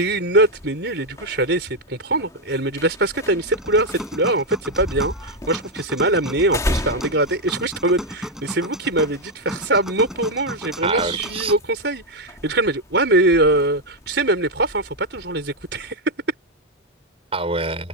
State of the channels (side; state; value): both; normal; correlation 0.02